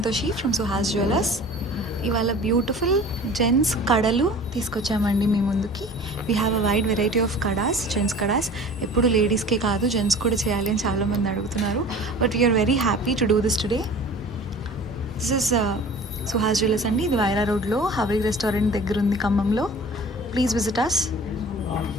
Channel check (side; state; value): both; normal; correlation 0.42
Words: from Suhas Jewelers. ఇవాళ beautiful gents కడలు తీసుకొచ్చామండి మీ ముందుకి. We have a wide variety of kadas, gents kadas. ఎప్పుడు లేడీస్కే కాదు, gents కూడా చేయాలి అని చాలామంది అడుగుతున్నారు. But we're very happy to do this today. This is Suhas jewellers అండి. ఇది వైరా రోడ్లో హవేలీ రెస్టారెంట్ దగ్గర ఉంది, ఖమ్మంలో. Please visit us.